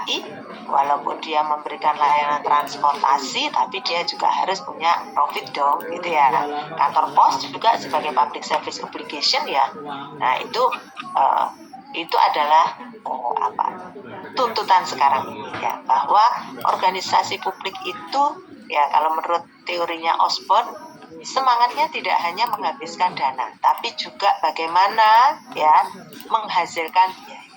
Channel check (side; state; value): both; identical; correlation 1.00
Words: walaupun dia memberikan layanan transportasi, tapi dia juga harus punya profit dong, gitu ya. Kantor pos juga sebagai public service obligation, ya. Nah, itu adalah tuntutan sekarang ini, ya, bahwa organisasi publik itu, ya, kalau menurut teorinya Osborne, semangatnya tidak hanya menghabiskan dana, tapi juga bagaimana, ya, menghasilkan